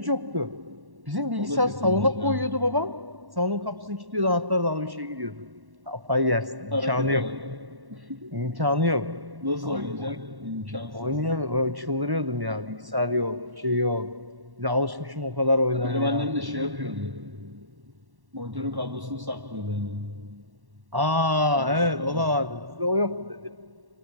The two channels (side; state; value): left; late; 1.1 ms